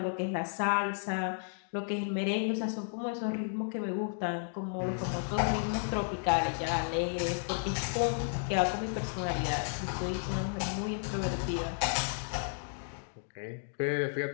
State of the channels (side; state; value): right; silent; digital silence